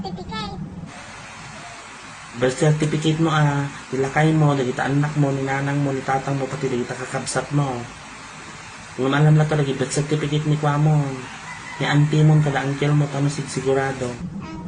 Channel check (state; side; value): identical; both; correlation 1.00